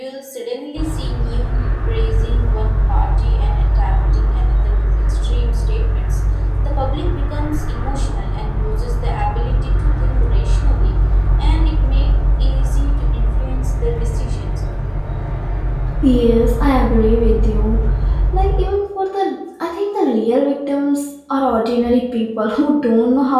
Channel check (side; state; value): both; identical; correlation 1.00